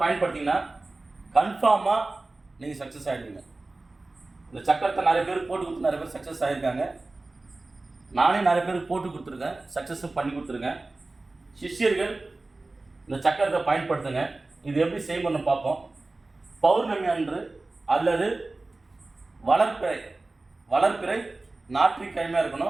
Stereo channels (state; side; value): quieter; left; 3.2 dB